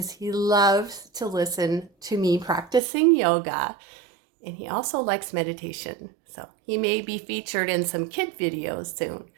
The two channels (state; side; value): drops out; left; at 2.8 s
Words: he loves to listen to me practicing yoga, and he also likes meditation. So he may be featured in some kid videos soon.